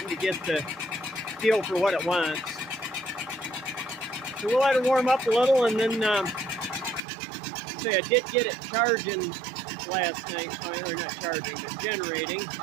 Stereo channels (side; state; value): left; drops out; at 7.0 s